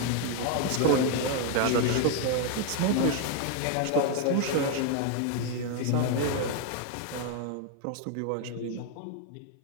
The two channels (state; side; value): different; both; correlation 0.00